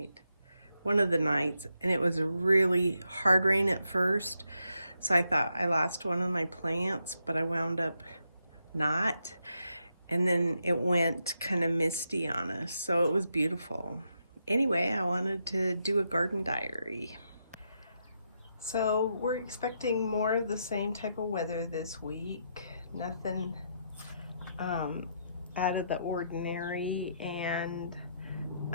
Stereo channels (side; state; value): both; inverted; correlation -0.81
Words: one of the nights, and it was a really hard rain at first. So I thought I lost one of my plants, but I wound up not. And then it went kind of misty on us, so it was beautiful. Anyway, I wanted to do a garden diary. So we're expecting more of the same type of weather this week. Nothing out of the ordinary, and